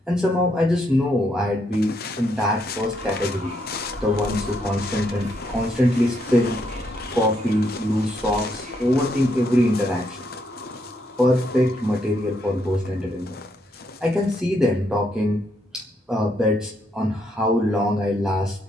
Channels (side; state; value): both; normal; correlation 0.76